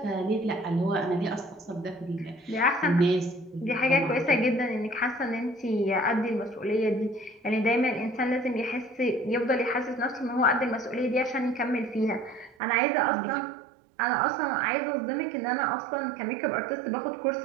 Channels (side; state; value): left; drops out; at 12.6 s